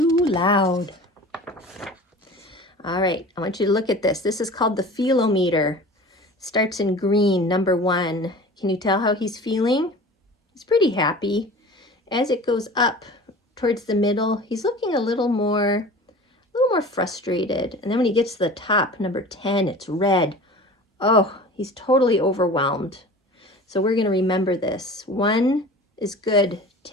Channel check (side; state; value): both; normal; correlation 0.39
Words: loud. All right, I want you to look at this. This is called the feelometer. Starts in green, number 1. Can you tell how he's feeling? He's pretty happy. As it goes up towards the middle, he's looking a little more frustrated. And then when he gets to the top, number 10, it's red. Oh, he's totally overwhelmed. So we're going to remember this. 1 is good.